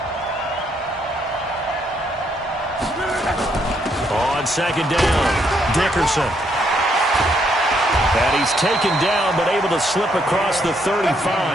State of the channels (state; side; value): normal; both; correlation 0.73